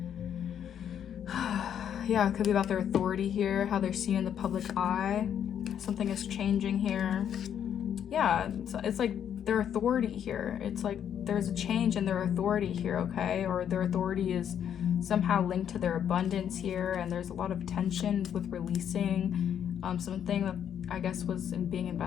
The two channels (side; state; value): right; quieter; 9.1 dB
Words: Yeah, it could be about their authority here, how they're seen in the public eye. Something is changing here. Yeah, it's like their authority here. It's like there's a change in their authority here, okay? Or their authority is somehow linked to their abundance here, and there's a lot of tension with releasing something that I guess was being